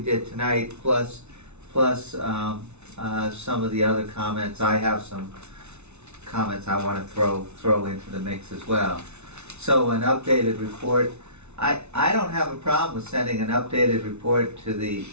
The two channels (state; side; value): late; left; 0.81 ms